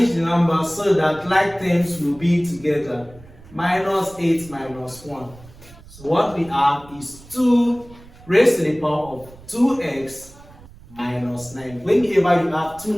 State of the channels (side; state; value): right; noise; rumble, 21 dB below the sound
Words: the numbers so that like terms will be together. Minus 8 minus 1. So what we have is 2 raised to the power of 2x minus 9. Whenever you have two